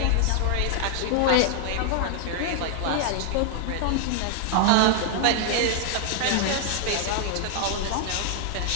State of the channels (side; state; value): both; different; correlation 0.00